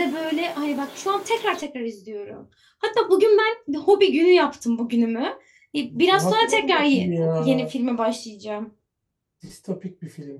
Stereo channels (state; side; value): identical; both; correlation 1.00